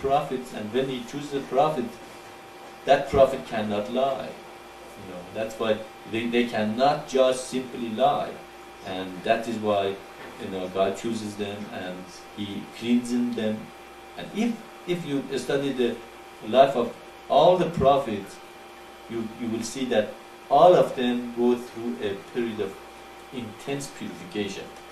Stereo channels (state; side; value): identical; both; correlation 1.00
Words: and when He chooses a prophet, that prophet cannot lie. That's why they cannot just simply lie, and that is why God chooses them and He cleanses them. And if you study the life of all the prophets, you will see that all of them go through a period of intense purification.